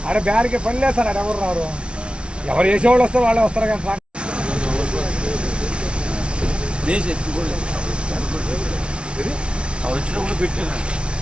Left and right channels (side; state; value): left; late; 0.058 ms